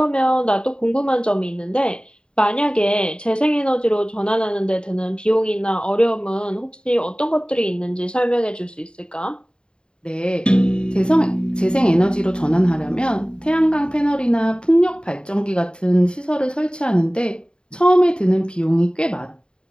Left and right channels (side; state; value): right; late; 0.051 ms